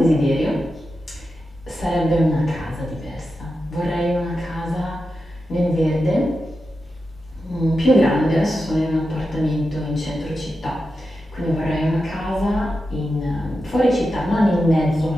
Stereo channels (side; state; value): both; normal; correlation 0.90